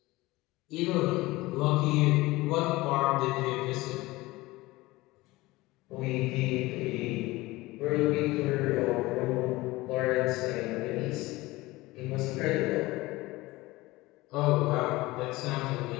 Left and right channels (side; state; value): right; quieter; 20.1 dB